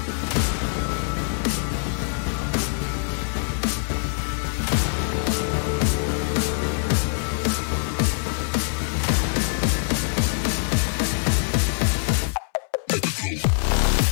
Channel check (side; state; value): right; silent; 63 dB below the other